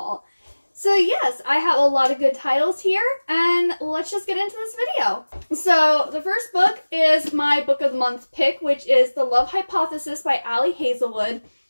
So yes, I have a lot of good titles here, and let's just get into this video. So the first book is my book of the month pick, which is The Love Hypothesis by Ali Hazelwood.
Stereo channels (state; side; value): inverted; both; correlation -1.00